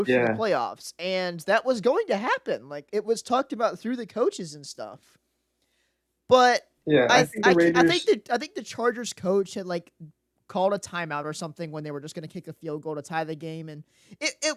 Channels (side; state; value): both; identical; correlation 1.00